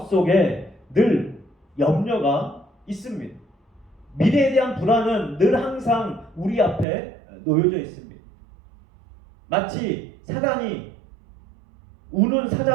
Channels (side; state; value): left; drops out; at 6.9 s